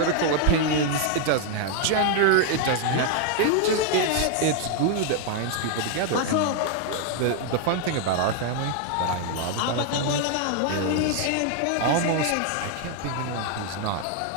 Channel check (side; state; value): both; different; correlation 0.00